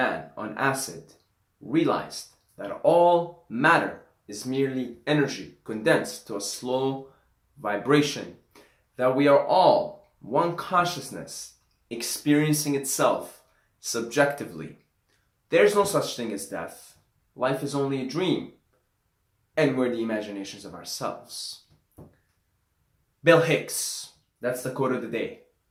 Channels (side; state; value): both; identical; correlation 1.00